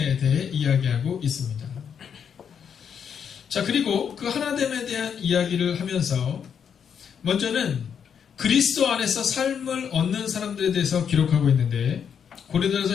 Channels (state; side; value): quieter; right; 7.6 dB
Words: 대해 이야기하고 있습니다. 자, 그리고 그 하나됨에 대한 이야기를 하면서 먼저는 그리스도 안에서 삶을 얻는 사람들에 대해서 기록하고 있는데, 고린도전서